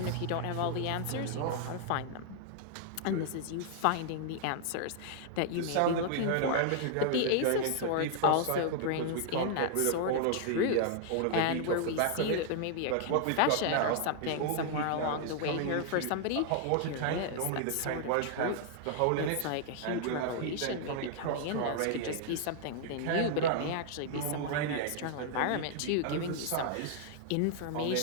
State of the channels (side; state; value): both; different; correlation 0.00